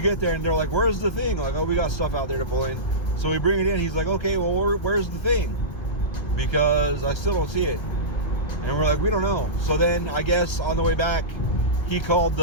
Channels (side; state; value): right; late; 1.3 ms